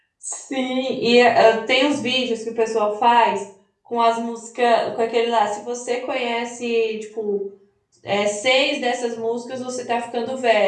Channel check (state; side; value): identical; both; correlation 1.00